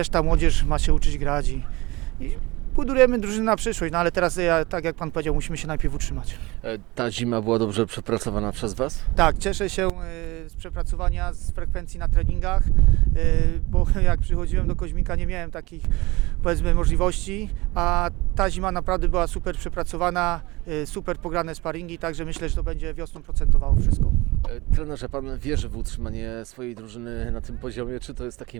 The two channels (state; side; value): quieter; left; 22.2 dB